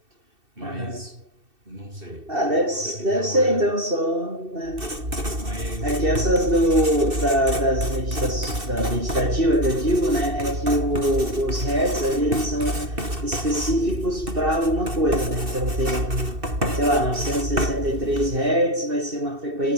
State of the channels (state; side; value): late; left; 2.7 ms